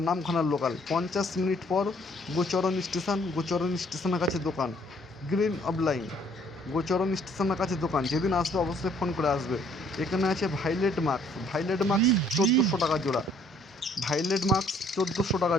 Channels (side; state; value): both; normal; correlation 0.62